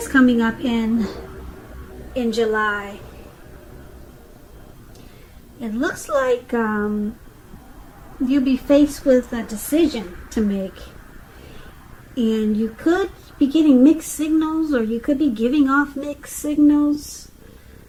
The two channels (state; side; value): identical; both; correlation 1.00